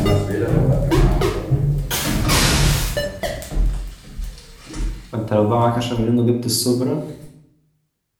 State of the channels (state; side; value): identical; both; correlation 1.00